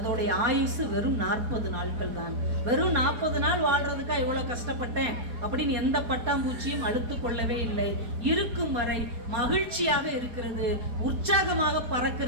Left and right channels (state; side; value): late; left; 4.5 ms